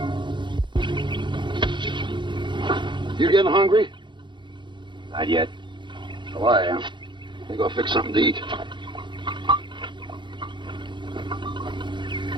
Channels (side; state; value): left; late; 0.23 ms